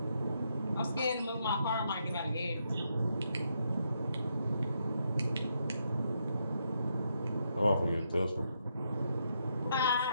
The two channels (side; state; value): both; inverted; correlation -0.79